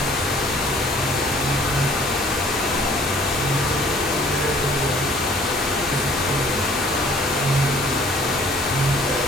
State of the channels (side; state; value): both; normal; correlation 0.56